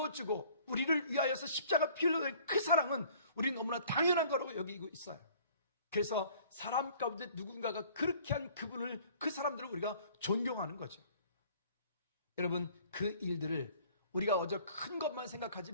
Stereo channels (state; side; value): inverted; both; correlation -0.54